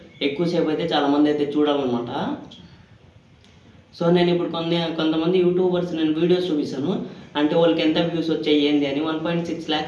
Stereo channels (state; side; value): identical; both; correlation 1.00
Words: ఎక్కువసేపు అయితే చాలామంది అయితే చూడాలన్నమాట. సో నేను ఇప్పుడు కొంతమంది యూట్యూబర్స్ నేను వీడియోస్ చూపిస్తాను. అంటే వాళ్ళకి ఎంత వ్యూస్ వచ్చాయి ఏంది అని. 1.6